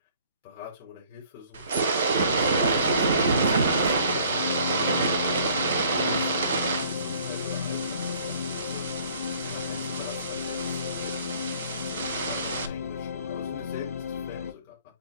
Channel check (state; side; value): inverted; both; correlation -0.56